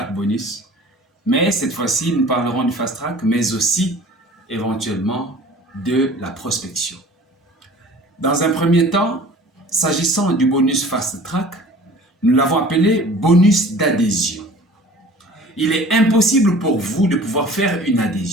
Bonus. Mais cette fois-ci, nous parlerons du Fast Track, mais aussi éventuellement de la prospection. Dans un premier temps, s'agissant du bonus Fast Track, nous l'avons appelé bonus d'adhésion. Il est impossible pour vous de pouvoir faire une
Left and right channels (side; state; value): both; normal; correlation 0.46